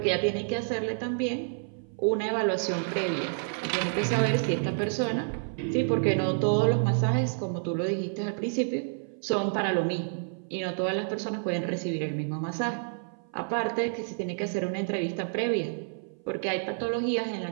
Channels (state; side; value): silent; left; 57 dB below the other